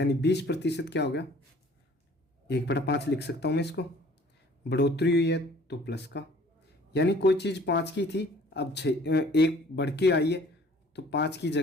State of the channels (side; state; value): both; normal; correlation 0.53